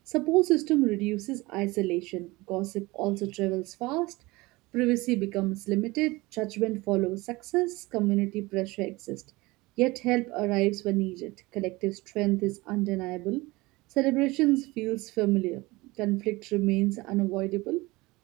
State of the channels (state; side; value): quieter; left; 22.0 dB